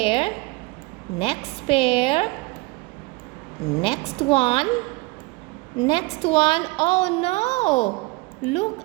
Next pair. Next one. Next one. Oh no! Look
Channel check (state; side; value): quieter; left; 23.8 dB